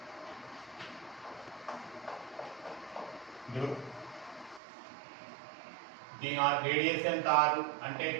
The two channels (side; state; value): left; drops out; at 4.6 s